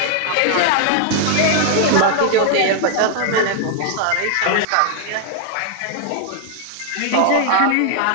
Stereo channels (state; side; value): different; both; correlation 0.00